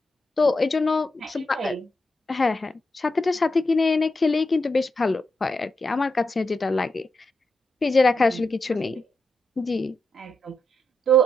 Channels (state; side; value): normal; both; correlation 0.85